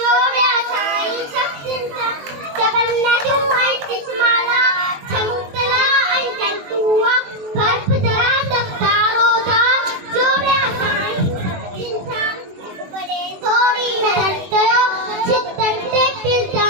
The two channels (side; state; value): left; late; 21 ms